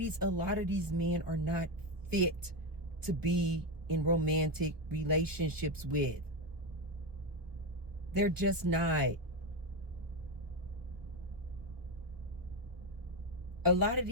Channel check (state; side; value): late; left; 1.2 ms